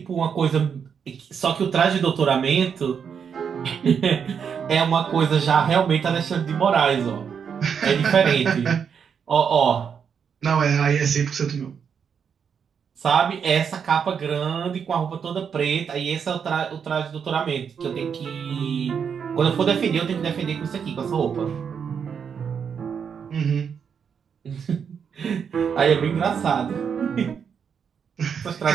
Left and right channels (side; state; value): left; quieter; 7.0 dB